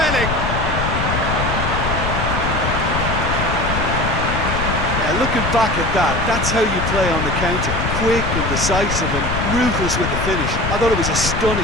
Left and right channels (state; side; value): noise; left; rumble, 2 dB below the sound